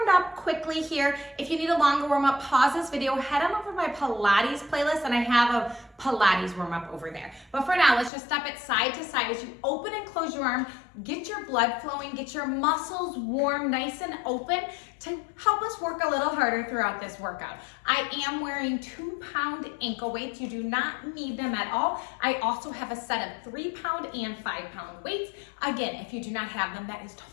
up quickly here. If you need a longer warm-up, pause this video, head on over to my Pilates playlist, and I have a Pilates warm-up over there. But for now, let's just step it side to side as you open and close your arm, get your blood flowing, get your muscles warm, nice and open to help us work a little harder throughout this workout. I am wearing 2-pound ankle weights. You do not need them at all. I also have a set of 3-pound and 5-pound weights. Again, if you do not have them, that is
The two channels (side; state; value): right; drops out; at 8.1 s